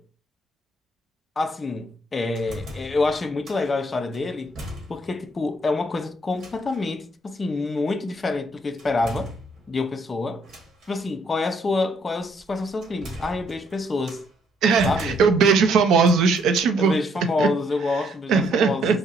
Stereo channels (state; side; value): normal; both; correlation 0.69